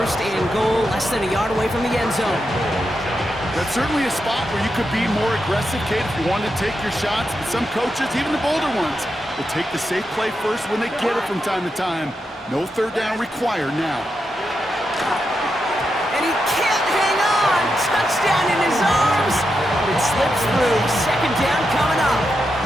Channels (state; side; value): normal; both; correlation 0.86